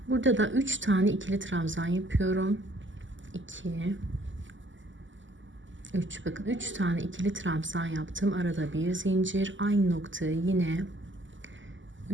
Burada da 3 tane ikili trabzan yapıyorum. 2, 3, bakın 3 tane ikili trabzan yaptım. Arada bir zincir, aynı noktaya yine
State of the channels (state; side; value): late; left; 0.55 ms